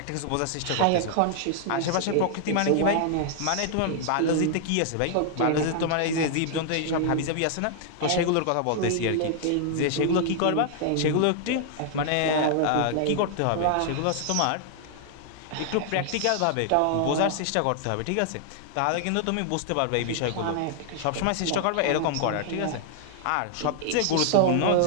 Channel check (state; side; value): different; both; correlation -0.01